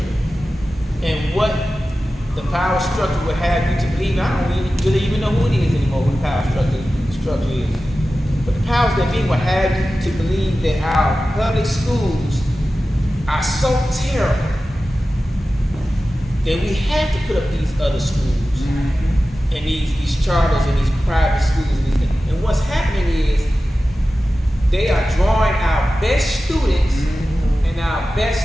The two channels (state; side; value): normal; both; correlation 0.94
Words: And what the power structure would have you to believe, I don't really even know who it is anymore, who the power structure is. But the powers that be would have you to believe that our public schools are so terrible that we have to put up these other schools and these charters and these private schools. And what's happening is they are drawing our best students and our